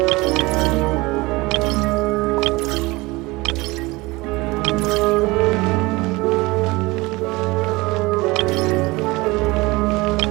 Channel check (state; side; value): quieter; left; 22.5 dB